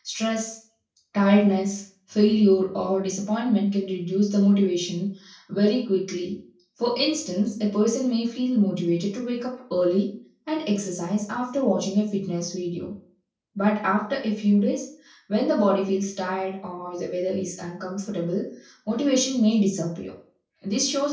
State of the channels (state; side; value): identical; both; correlation 1.00